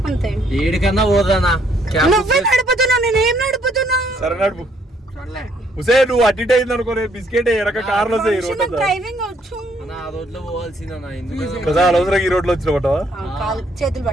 అంతే ఏడికన్నా పోదానా నువ్వే నడుపుతున్నావు నేనేం నడుపుతున్నా సరే నడుపు హుసే నువ్వు అటు ఇటు అయింది అనుకో బిస్కెట్ ఎరక కార్లో వస్తాయి ఈ రోడ్ డ్రైవింగ్ వచ్చు ఆ రోడ్లో పోవాల్సిందన్నా ఎందుకు కదా అవసరం ఈ రోడ్ లో వచ్చిన పట్టవా చేతులు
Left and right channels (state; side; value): normal; both; correlation 0.68